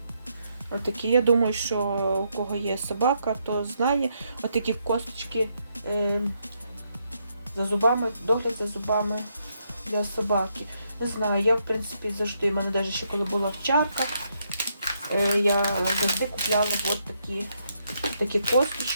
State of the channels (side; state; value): both; inverted; correlation -0.77